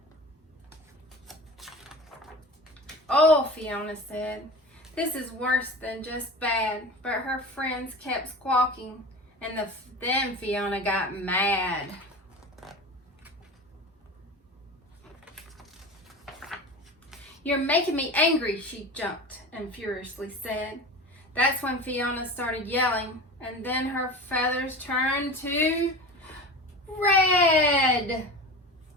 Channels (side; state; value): both; normal; correlation 0.33